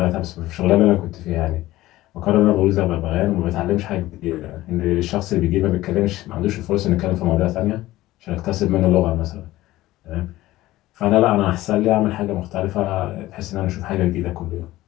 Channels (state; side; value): quieter; right; 16.7 dB